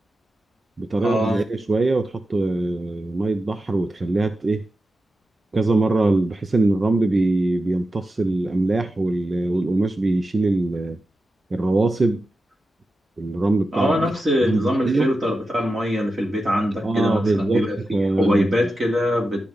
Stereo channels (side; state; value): both; normal; correlation 0.91